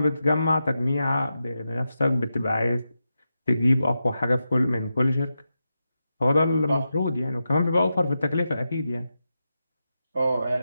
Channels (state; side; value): inverted; both; correlation -0.89